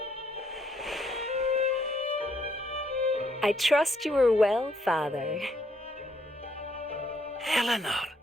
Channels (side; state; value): both; normal; correlation 0.71